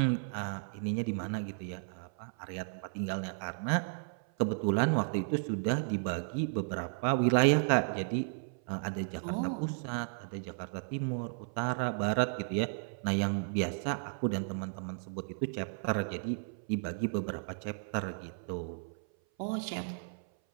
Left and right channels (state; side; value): silent; left; 55 dB below the other